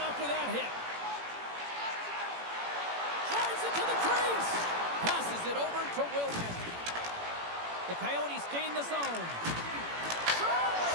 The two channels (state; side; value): late; left; 18 ms